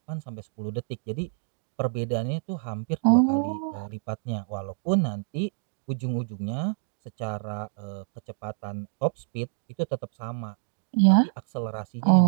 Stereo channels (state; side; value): silent; left; digital silence